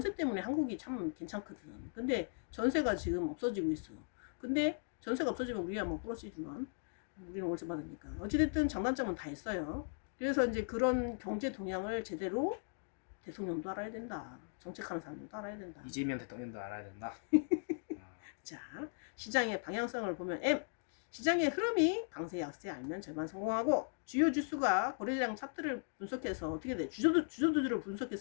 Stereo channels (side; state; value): right; silent; digital silence